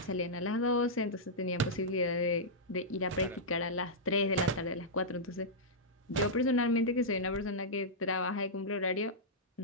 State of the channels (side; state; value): both; normal; correlation -0.11